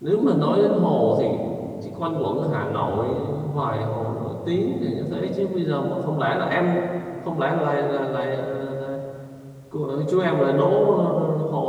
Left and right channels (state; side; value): identical; both; correlation 1.00